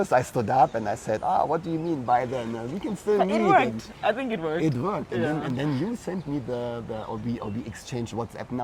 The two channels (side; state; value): both; identical; correlation 1.00